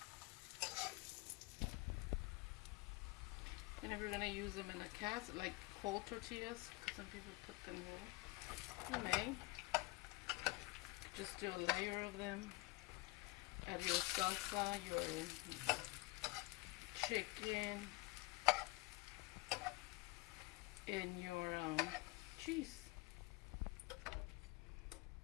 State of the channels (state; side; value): quieter; right; 22.8 dB